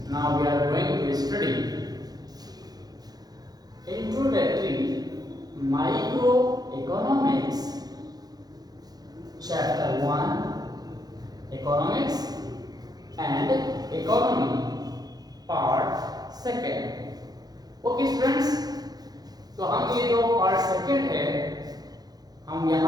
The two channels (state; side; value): late; left; 0.19 ms